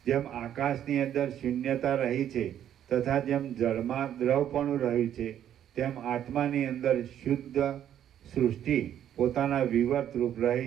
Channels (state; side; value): quieter; left; 10.4 dB